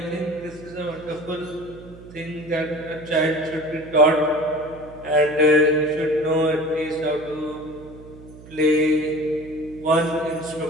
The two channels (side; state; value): right; noise; hum, 19 dB below the sound